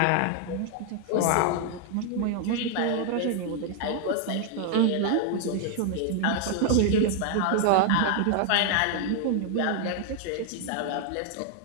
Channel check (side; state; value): both; different; correlation 0.00